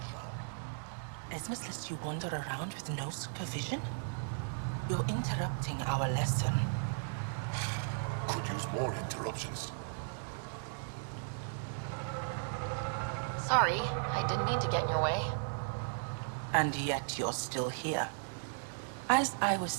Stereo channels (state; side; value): silent; left; digital silence